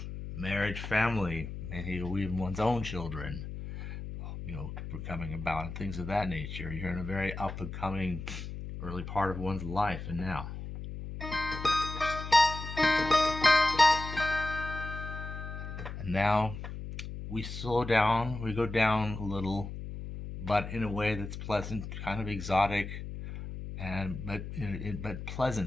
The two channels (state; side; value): noise; left; hum, 8 dB below the sound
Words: marriage, family, maybe even one's own children, coming about, and things of that nature. You're in a very up and coming early part of one's life, and now. And now we slow down, we go down a little, but in a way that's pleasant, kind of exotic, but